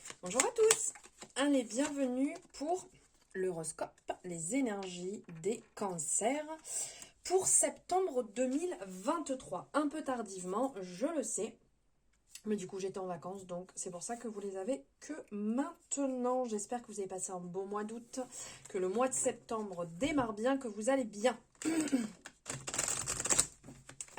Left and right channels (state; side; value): identical; both; correlation 1.00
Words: Bonjour à tous. Allez, bienvenue pour l'horoscope, les énergies des cancers pour septembre 2023. Un peu tardivement, je le sais, mais du coup j'étais en vacances, donc c'est pour ça que vous les avez que maintenant. J'espère que vous avez passé un beau mois d'août, que le mois de septembre démarre bien, que vous allez bien.